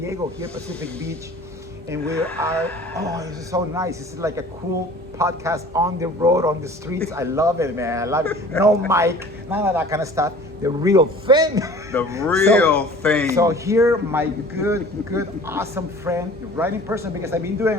here Pacific Beach, and we are. Oh, this is so nice. This is like a cool podcast on the road, on the streets. I love it, man. I love it. No mic, none of that kind of stuff. The real thing. The real thing. So here, my good, awesome friend, right in person, because I've been doing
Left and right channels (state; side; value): normal; both; correlation 0.45